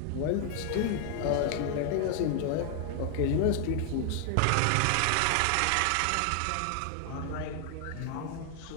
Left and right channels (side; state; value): both; different; correlation 0.00